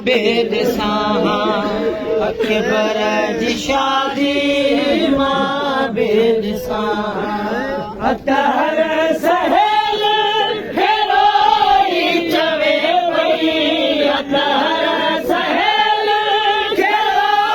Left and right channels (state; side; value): identical; both; correlation 1.00